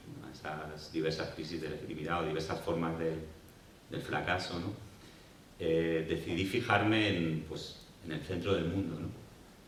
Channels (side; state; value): both; identical; correlation 1.00